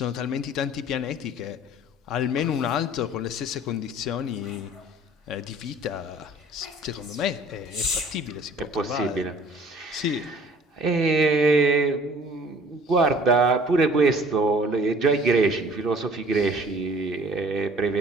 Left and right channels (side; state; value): both; normal; correlation 0.51